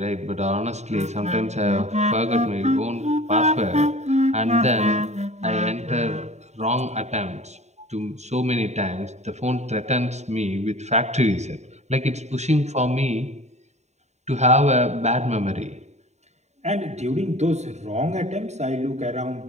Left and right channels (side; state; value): left; late; 0.32 ms